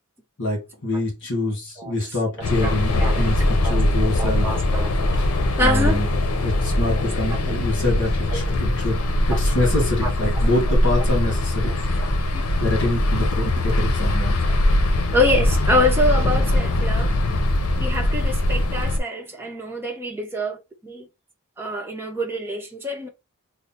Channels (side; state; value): both; normal; correlation 0.69